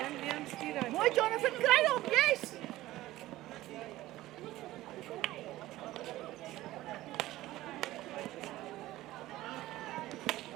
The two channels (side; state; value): left; quieter; 16.4 dB